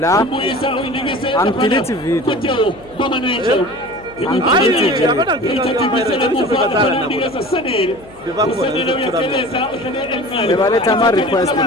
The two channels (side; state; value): left; noise; hum, 22 dB below the sound